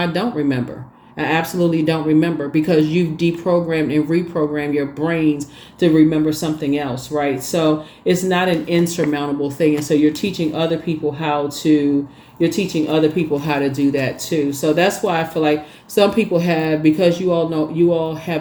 don't remember. I absolutely don't remember, because you've deprogrammed and reprogrammed your brains to remember something else, right? So it's not an insurmountable thing. And so you're teaching other people how to do that too. So that's why I feel like some people have, because you all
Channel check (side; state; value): both; identical; correlation 1.00